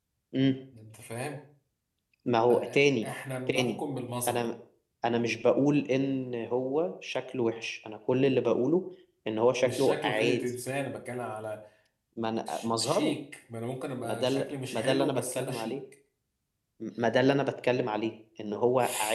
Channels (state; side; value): identical; both; correlation 1.00